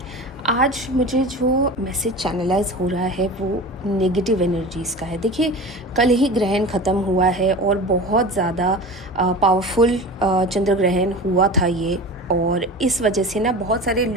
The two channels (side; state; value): both; normal; correlation 0.33